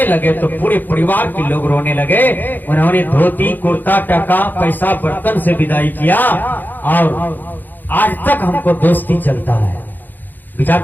लगे तो पूरे परिवार के लोग रोने लगे। उन्होंने धोती, कुर्ता, टका, पैसा, बर्तन से विदाई किया, और आज तक हमको दोस्ती चलता है। विचार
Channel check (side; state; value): right; late; 0.087 ms